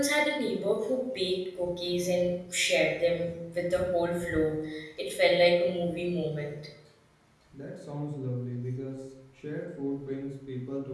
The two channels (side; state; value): both; identical; correlation 1.00